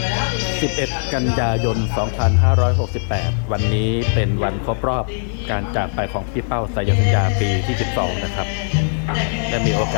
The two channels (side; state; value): right; silent; 66 dB below the other